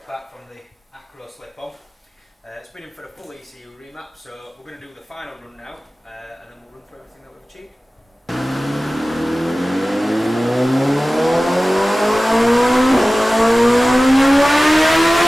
apart from the acro slip-on. It's been in for a full ECU remap, so we're going to do the final run now, and then we'll run through everything that we've achieved.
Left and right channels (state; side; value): normal; both; correlation 0.97